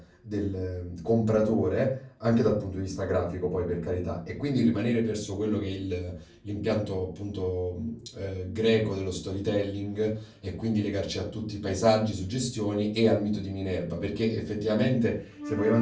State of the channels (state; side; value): identical; both; correlation 1.00